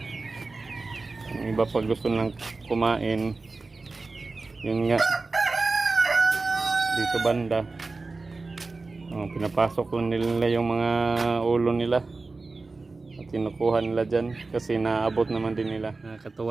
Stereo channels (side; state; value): left; quieter; 3.7 dB